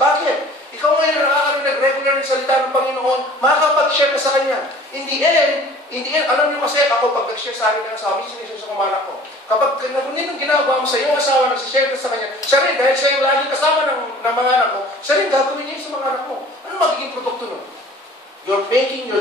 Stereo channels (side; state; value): both; normal; correlation 0.47